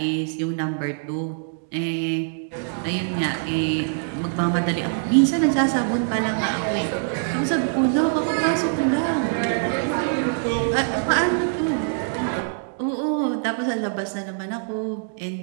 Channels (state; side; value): silent; left; digital silence